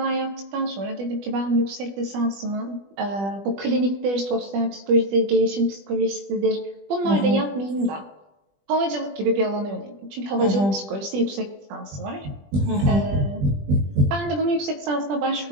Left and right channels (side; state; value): left; late; 20 ms